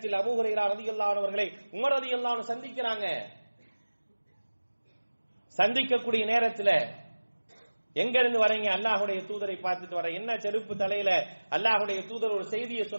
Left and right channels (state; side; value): inverted; both; correlation -1.00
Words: அபூ ஹுரைரா ரலியல்லாஹு அன்ஹு அவர்களை உமர் ரலியல்லாஹு அன்ஹு சந்திக்கிறாங்க. சந்திக்கக்கூடிய நேரத்தில் எங்க இருந்து வரீங்க? அல்லாஹ்வுடைய தூதரை பார்த்துட்டு வர. என்ன செருப்பு தலையில? அல்லாஹ்வுடைய தூதர் ஒரு செய்தியை